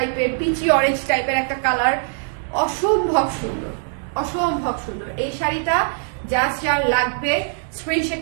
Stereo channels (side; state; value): left; silent; 61 dB below the other